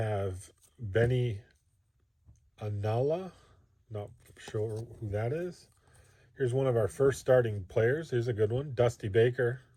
Benny Anala. Not sure who that is. Here's one of our first starting players. Here's a good one. Dusty Baker.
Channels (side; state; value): both; identical; correlation 1.00